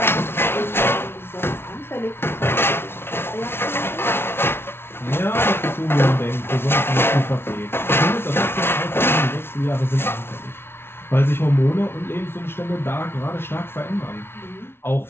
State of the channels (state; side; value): late; right; 0.12 ms